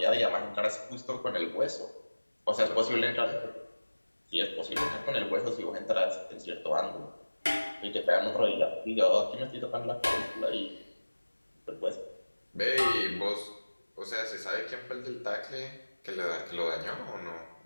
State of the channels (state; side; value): inverted; both; correlation -1.00